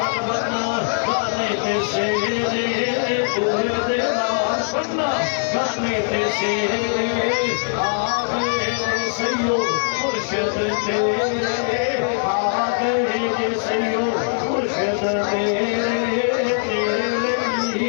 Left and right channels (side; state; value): right; silent; 59 dB below the other